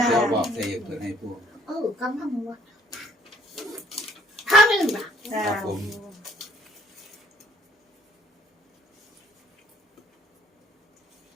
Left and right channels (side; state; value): both; normal; correlation 0.61